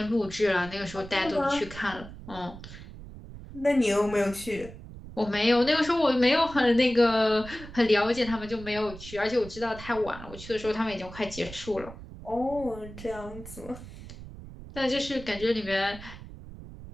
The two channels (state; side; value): noise; right; rumble, 14 dB below the sound